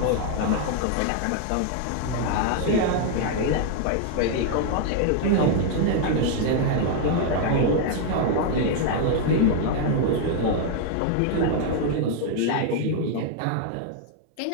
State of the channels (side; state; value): both; different; correlation 0.00